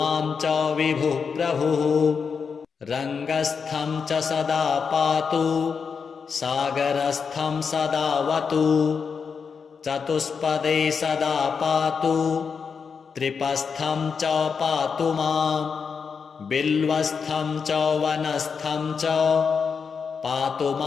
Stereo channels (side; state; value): right; quieter; 5.9 dB